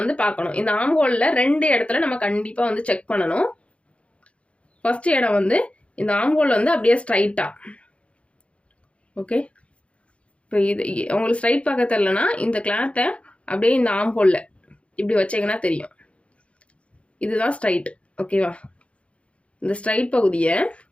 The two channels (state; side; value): late; right; 0.061 ms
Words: பார்க்கணும். இந்த ஆம்கோலில் 2 இடத்துல நம்ம கண்டிப்பாக வந்து செக் பண்ணணும். ஃபர்ஸ்ட் இடம் வந்து இந்த ஆம்கோல் வந்து அப்படியே ஸ்ட்ரைட்டாக. ஓகே, இப்போ இது உங்களுக்கு ஸ்ட்ரைட் பார்க்க தெரியலனா இந்த கிளாத்தை அப்படியே இந்த ஆம்கோலில் இப்படி வச்சிங்கன்னா தெரியும், இதுதான் ஸ்ட்ரைட். ஓகேவா? இந்த ஸ்ட்ரைட் பகுதியை